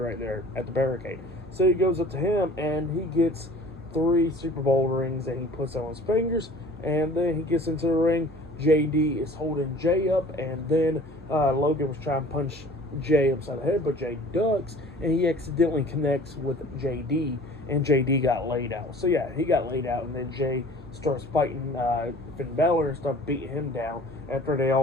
there at the barricade. So he goes up to him and he gets 3 Super Bowl rings and he puts them on his fingers. And then he gets into the ring. JD is holding Jey up, and then Logan was trying to punch Jey upside the head, but Jey ducks and he accidentally connects with JD, and JD got laid out. So yeah, he got laid out, and then Jey starts fighting Finn Balor and stuff, beating him down after they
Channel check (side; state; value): both; normal; correlation 0.47